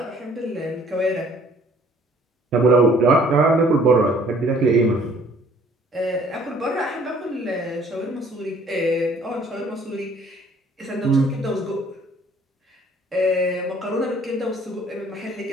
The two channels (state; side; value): normal; both; correlation 0.57